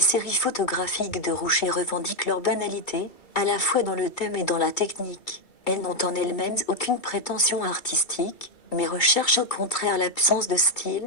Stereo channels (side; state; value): right; late; 2.3 ms